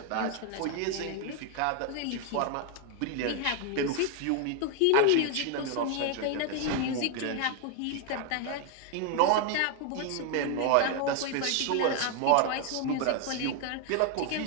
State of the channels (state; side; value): different; both; correlation 0.01